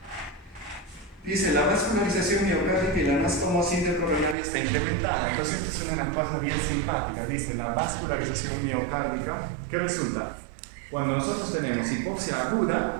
Dice, la vascularización miocárdica y la anastomosis intercoronaria está incrementada. Entonces, esto es una cosa bien simpática. Dice, la vascularización miocárdica, ¿qué resulta? Cuando nosotros tenemos hipoxia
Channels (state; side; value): drops out; left; at 4.4 s